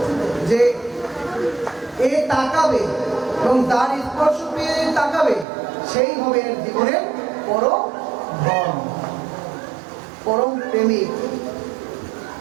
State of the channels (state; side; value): drops out; left; at 5.5 s